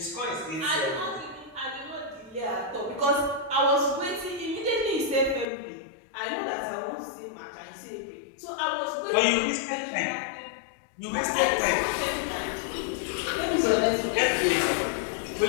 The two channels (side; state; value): right; drops out; at 5.5 s